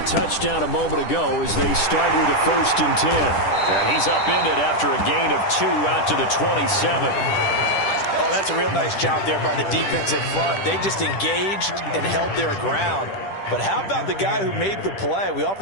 touchdown a moment ago as they start with a 1st and 10. And he's upended after a gain of 2 out to the 27. Oh, that's a real nice job there by the defensive front. They just engaged and held their ground. But how about the guy who made the play? We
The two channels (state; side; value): late; right; 10 ms